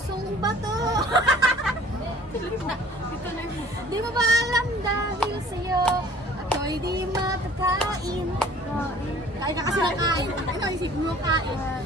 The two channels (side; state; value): both; normal; correlation 0.51